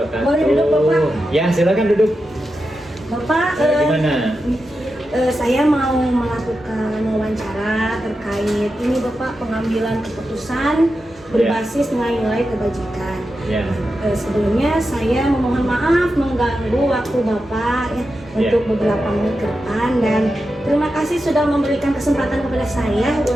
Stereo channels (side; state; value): both; normal; correlation 0.89